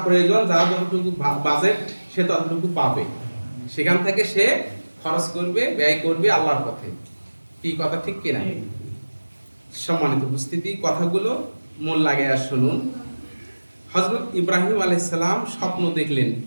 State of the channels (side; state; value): both; inverted; correlation -1.00